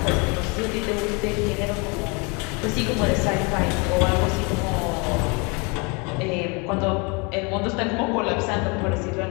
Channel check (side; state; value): right; quieter; 30.7 dB